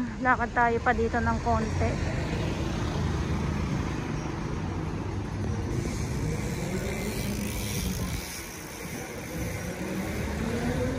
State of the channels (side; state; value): both; identical; correlation 1.00